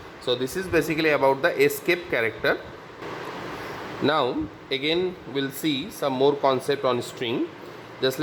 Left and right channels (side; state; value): both; identical; correlation 1.00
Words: So this is basically about the escape character. Now again we'll see some more concept on string. Just